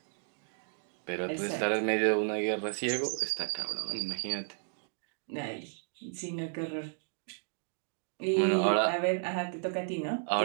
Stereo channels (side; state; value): left; silent; digital silence